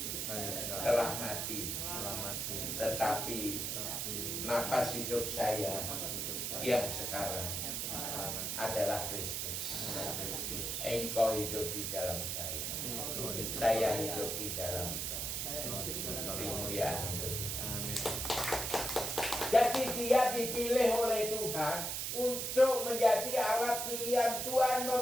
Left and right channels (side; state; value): right; noise; hiss, 2 dB below the sound